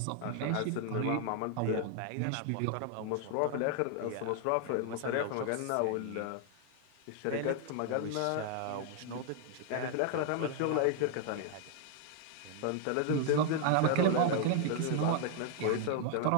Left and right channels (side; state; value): both; different; correlation 0.00